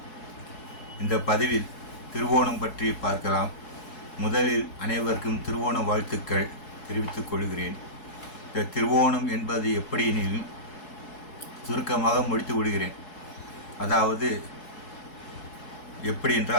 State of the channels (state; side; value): late; right; 4.7 ms